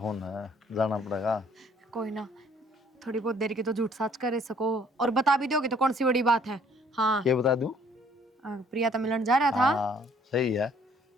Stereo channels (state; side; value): normal; both; correlation 0.60